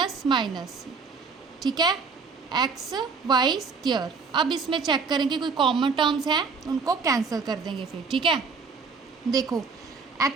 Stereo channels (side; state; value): left; quieter; 5.0 dB